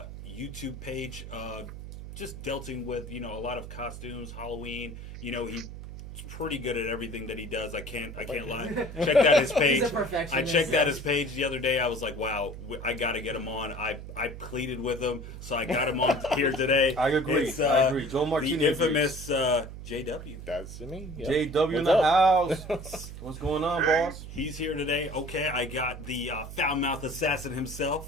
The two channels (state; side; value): noise; right; hum, 11 dB below the sound